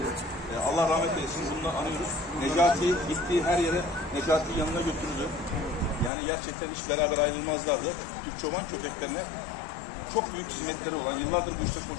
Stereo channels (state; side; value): drops out; right; at 6.1 s